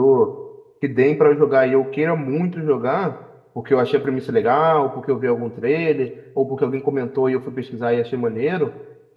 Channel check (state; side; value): identical; both; correlation 1.00